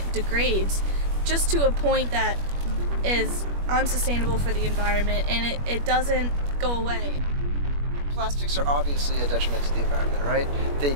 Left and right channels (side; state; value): left; late; 21 ms